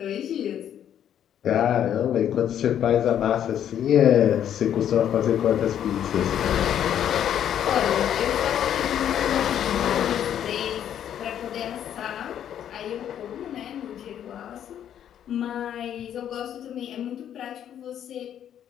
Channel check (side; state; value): right; quieter; 10.0 dB